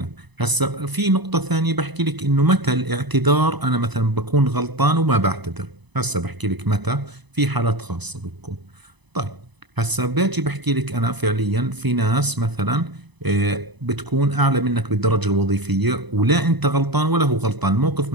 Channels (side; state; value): left; late; 1.0 ms